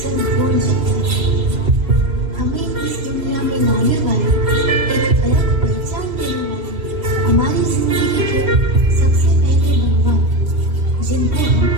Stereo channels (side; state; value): left; late; 3.0 ms